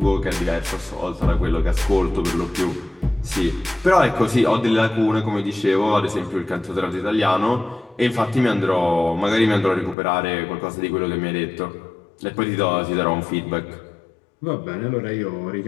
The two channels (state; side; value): drops out; right; at 10.0 s